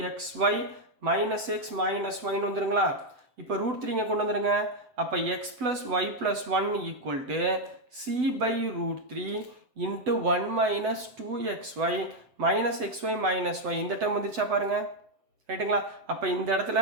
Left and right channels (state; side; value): late; left; 7.9 ms